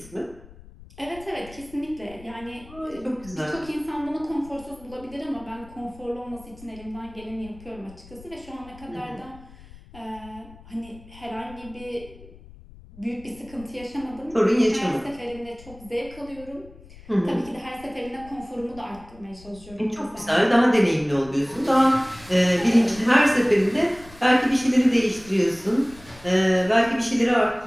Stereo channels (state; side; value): noise; left; rumble, 20 dB below the sound